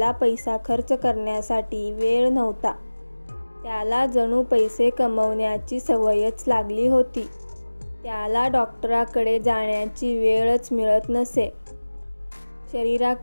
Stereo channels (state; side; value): inverted; both; correlation -1.00